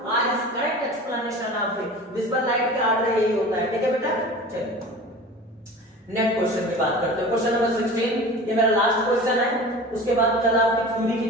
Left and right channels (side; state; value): both; normal; correlation 0.37